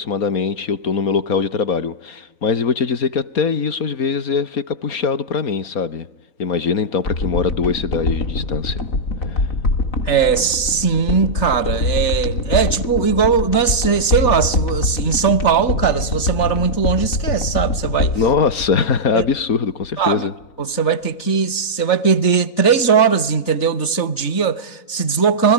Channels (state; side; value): late; right; 3.4 ms